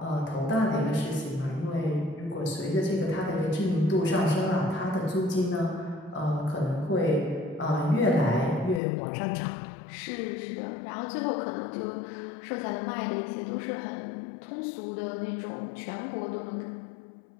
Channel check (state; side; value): drops out; right; at 8.8 s